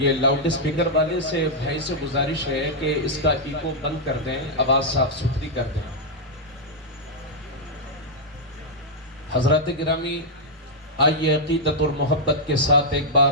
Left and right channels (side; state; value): both; normal; correlation -0.05